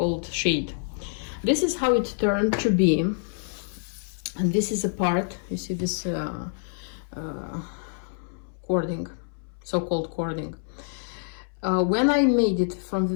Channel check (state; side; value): silent; right; 60 dB below the other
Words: shade. This is how it turned to be, and this is a part, you see this cording, so-called cording. When I made it from